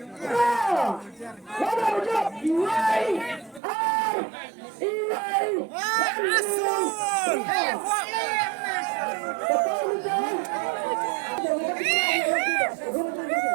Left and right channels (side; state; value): left; drops out; at 3.6 s